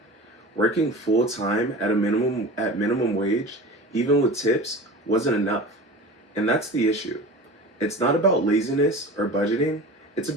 Working full time at minimum wage, even with tips, wasn't enough. And that's the issue. It's not about laziness or budgeting, it's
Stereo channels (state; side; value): normal; both; correlation 0.35